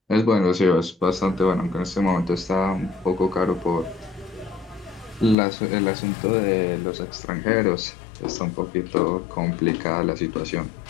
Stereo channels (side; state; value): right; drops out; at 5.4 s